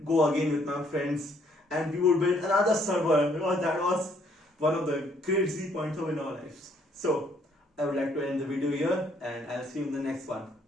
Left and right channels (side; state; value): both; normal; correlation 0.66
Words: go again with my friends, and we would build another server, because that was one of the crazy points of in our lives. So I would like to end the video here, and I'll see you in the next one.